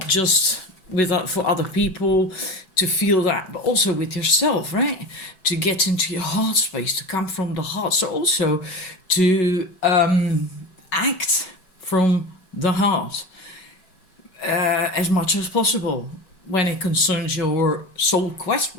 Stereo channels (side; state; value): right; late; 5.2 ms